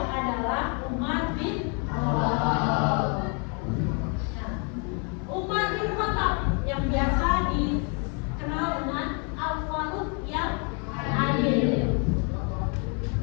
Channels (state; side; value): quieter; right; 37.5 dB